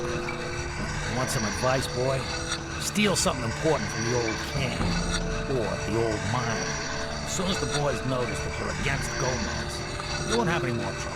crowd. You want some advice, boy? Steal something important from the old camp, or the old mine. As soon as the boys notice that you're against Gomez, you won't have any more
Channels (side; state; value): both; identical; correlation 1.00